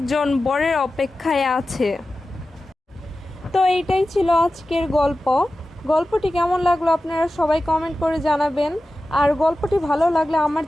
বরের অপেক্ষায় আছে। তো এইটাই ছিল আজকের গল্প। গল্পটি কেমন লাগলো আপনারা সবাই কমেন্ট করে জানাবেন। আর গল্পটি ভালো লাগলে আমার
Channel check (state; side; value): normal; both; correlation 0.94